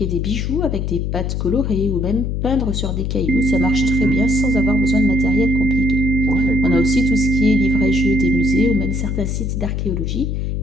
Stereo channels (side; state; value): left; noise; hum, 1 dB below the sound